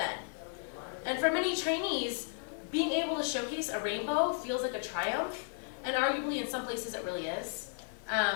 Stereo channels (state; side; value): silent; right; 55 dB below the other